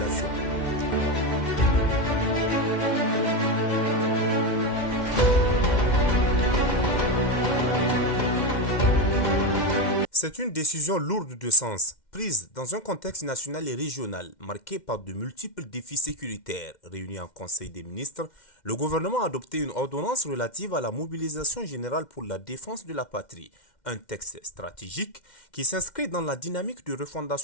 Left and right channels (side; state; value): right; late; 2.1 ms